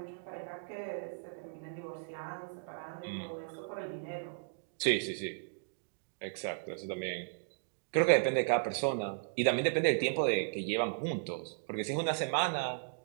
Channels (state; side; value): silent; left; digital silence